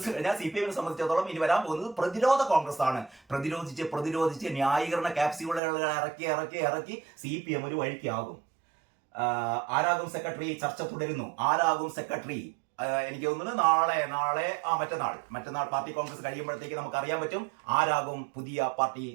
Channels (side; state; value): left; drops out; at 5.6 s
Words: കഴിഞ്ഞാൽ CPM സംബന്ധിച്ചിടത്തോളം ഇനി വരാൻ പോകുന്നത് പ്രതിരോധ കോൺഗ്രസ് ആണ്. പ്രതിരോധിച്ച് ന്യായീകരണ ക്യാപ്സ്യൂളുകൾ ഇറക്കി CPM ഒരു വഴിക്കാകും. ആരാകും സെക്രട്ടറി? ചർച്ച തുടരുന്നു. ആരാകും സെക്രട്ടറി? എനിക്ക് തോന്നുന്നു മറ്റന്നാൾ പാർട്ടി കോൺഗ്രസ് കഴിയുമ്പോഴത്തേക്ക് നമുക്ക് അറിയാൻ പറ്റും ആരാകും പുതിയ പാർട്ടി